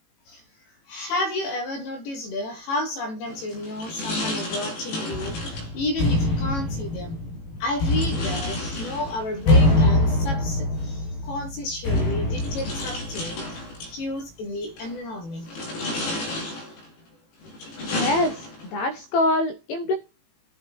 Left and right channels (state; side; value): late; right; 18 ms